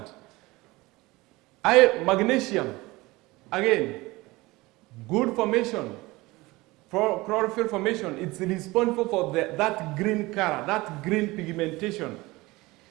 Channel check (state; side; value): quieter; left; 21.2 dB